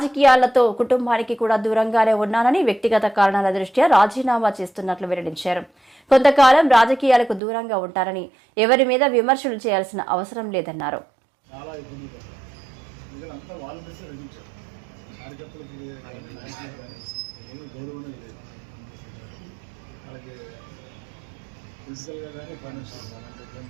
కుటుంబానికి కూడా దూరంగానే ఉన్నానని, వ్యక్తిగత కారణాల దృష్ట్యా రాజీనామా చేస్తున్నట్లు వెల్లడించారు. కొంతకాలం రాజకీయాలకు దూరంగా ఉంటారని, ఎవరి మీద విమర్శలు చేయాల్సిన అవసరం లేదన్నారు. ఫిజికల్గా కానీ ఫైనాన్షియల్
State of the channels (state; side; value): drops out; left; at 7.4 s